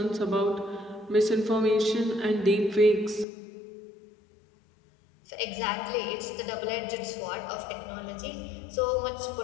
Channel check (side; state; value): right; drops out; at 3.2 s